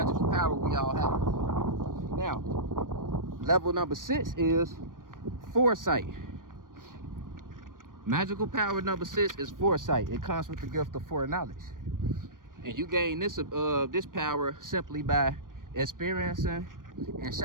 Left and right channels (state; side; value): late; left; 0.90 ms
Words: power we all have. Now, level number 6 is foresight. Magical power number 6 is foresight. It comes with the gift of foreknowledge. And you gain this power simply by experiencing and